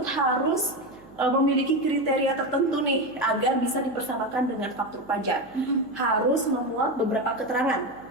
harus memiliki kriteria tertentu nih agar bisa dipersamakan dengan faktur pajak. Harus memuat beberapa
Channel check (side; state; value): right; noise; hum, 25 dB below the sound